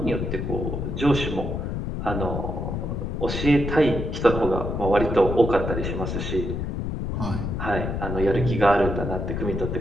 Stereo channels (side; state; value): left; noise; rumble, 3 dB below the sound